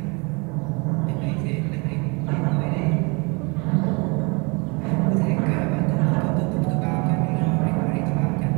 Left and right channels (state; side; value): quieter; left; 29.9 dB